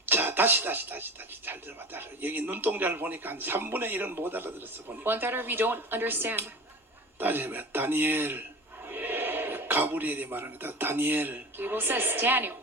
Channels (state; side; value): normal; both; correlation 0.34